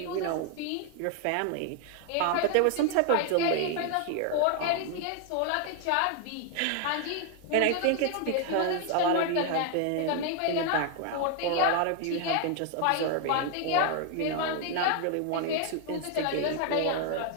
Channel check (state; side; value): different; both; correlation 0.00